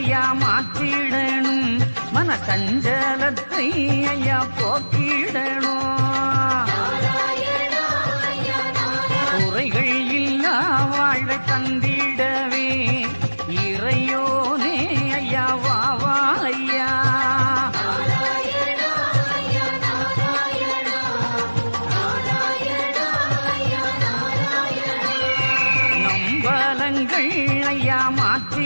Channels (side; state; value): both; inverted; correlation -1.00